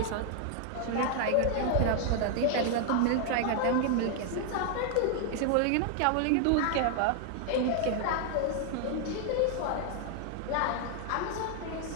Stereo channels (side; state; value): both; different; correlation 0.00